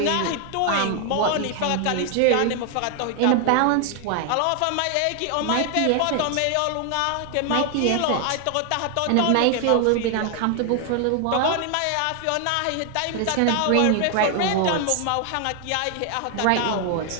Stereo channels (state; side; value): different; both; correlation 0.00